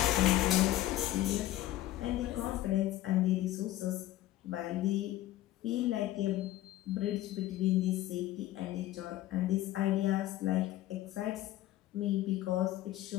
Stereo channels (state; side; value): quieter; right; 14.8 dB